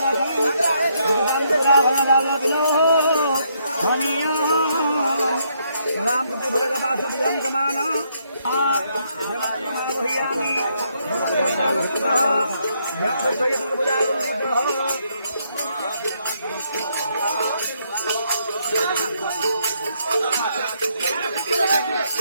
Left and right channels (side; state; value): both; inverted; correlation -0.74